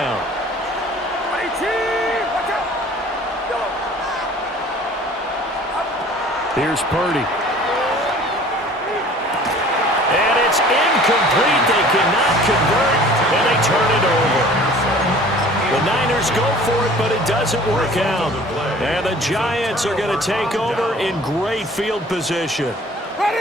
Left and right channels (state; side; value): normal; both; correlation 0.48